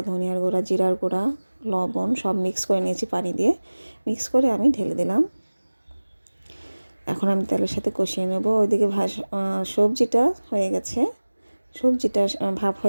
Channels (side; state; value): both; inverted; correlation -1.00